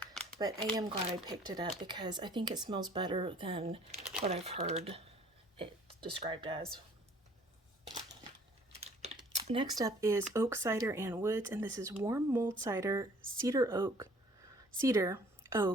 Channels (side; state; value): both; normal; correlation 0.55